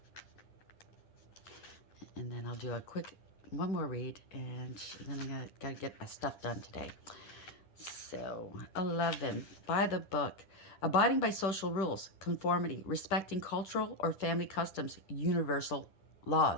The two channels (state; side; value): late; right; 10 ms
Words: And then I'll do a quick one more read, and then I got to get my stuff done today. So 11, by the book. Abiding by social rules, conformity, respecting cultural or family customs, universal